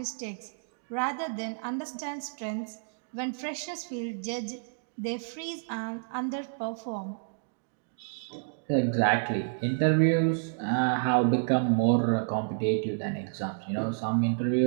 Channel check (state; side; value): silent; left; digital silence